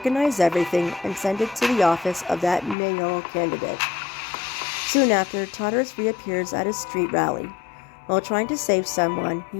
everything and send it to the office of that mayoral candidate. Soon after, Tartarus reappears at a street rally. While trying to save someone,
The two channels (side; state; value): right; drops out; at 2.8 s